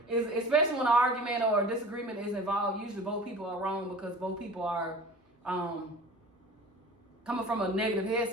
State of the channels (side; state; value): both; normal; correlation 0.40